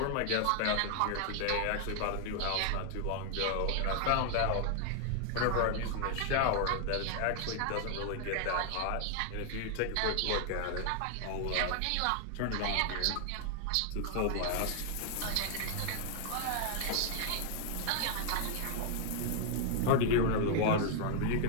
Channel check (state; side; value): different; both; correlation 0.00